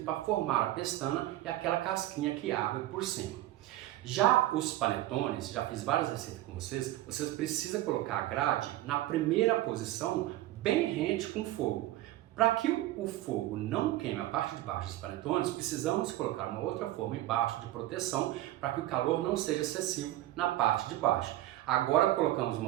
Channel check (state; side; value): quieter; left; 15.3 dB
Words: para formar a pestana e aquela casquinha que abre por cima. Já os panetones, já fiz várias receitas com vocês precisam colocar a grade na primeira posição, bem rente com o fogo. Para que o fogo não queime a parte de baixo dos panetones, precisamos colocar uma outra forma embaixo de proteção para que o calor não seja excessivo na parte de baixo. Agora colocamos